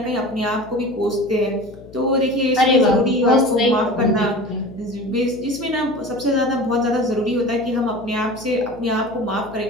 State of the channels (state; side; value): noise; left; hum, 19 dB below the sound